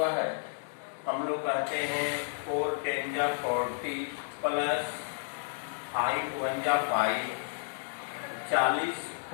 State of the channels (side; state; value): right; silent; 57 dB below the other